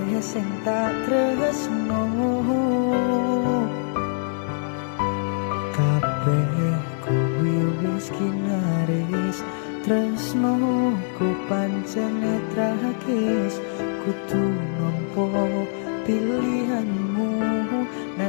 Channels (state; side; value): silent; right; digital silence